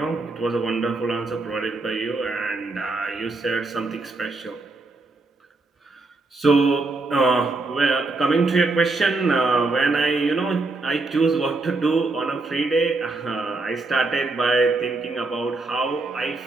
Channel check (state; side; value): quieter; left; 3.4 dB